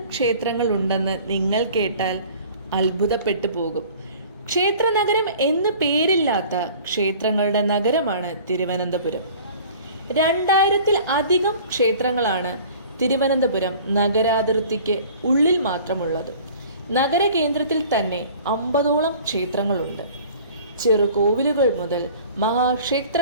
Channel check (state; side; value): inverted; both; correlation -0.47